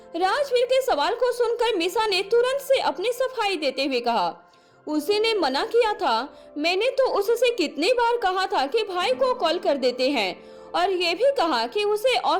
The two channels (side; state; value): both; identical; correlation 1.00